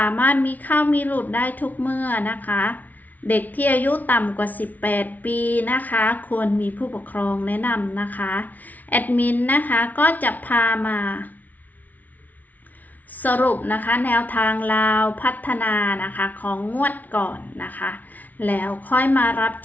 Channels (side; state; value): right; late; 0.077 ms